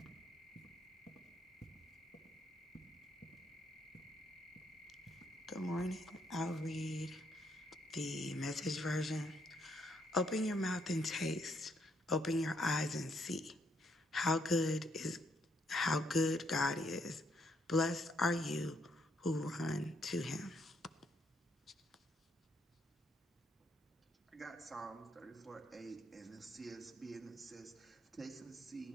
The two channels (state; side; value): normal; both; correlation 0.73